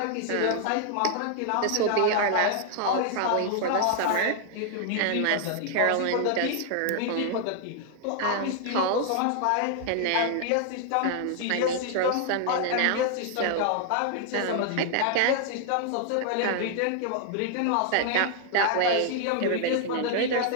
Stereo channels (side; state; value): both; different; correlation 0.00